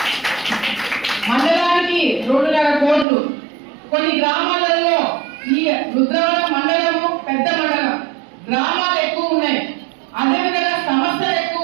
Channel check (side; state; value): left; drops out; at 3.1 s